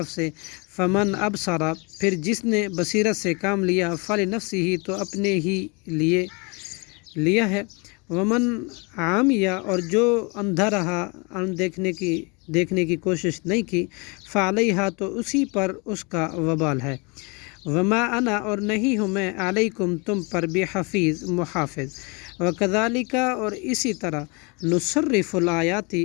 سے فمن ابصر پھر جس نے بصیرت سے کام لیا فلنفسہ تو اپنے ہی لیے لیا ہے ومن عامیہ اور جو اندھا رہا دیکھنے کی کوشش نہیں کی فعلیہا تو اسی پر اس کا وبال ہے وما انا اور نہیں ہوں میں علیکم تم پر بحفیظ محافظ وکذالک اور اسی طرح نصرف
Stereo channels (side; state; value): right; quieter; 30.4 dB